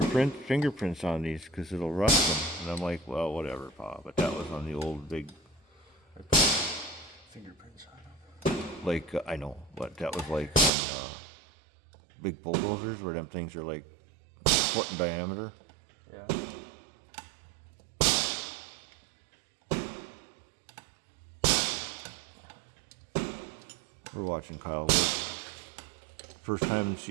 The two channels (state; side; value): drops out; left; at 10.7 s